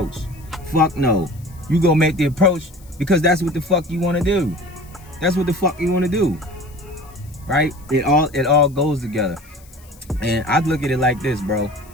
Fuck no. You gonna make the approach because that's what the fuck you wanna do. That's what the fuck you wanna do. Right? It all goes together. And I'd look at it like this, bro.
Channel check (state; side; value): noise; left; hiss, 26 dB below the sound